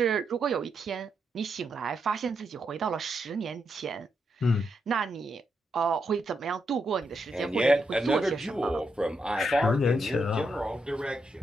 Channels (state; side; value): normal; both; correlation 0.82